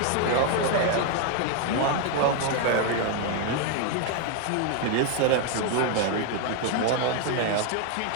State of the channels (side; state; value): both; different; correlation 0.01